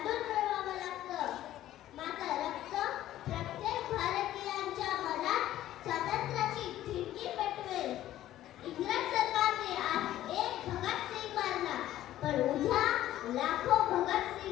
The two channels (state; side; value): quieter; right; 13.5 dB